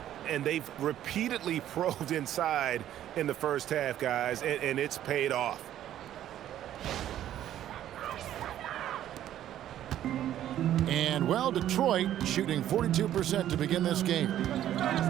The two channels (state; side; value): quieter; left; 11.8 dB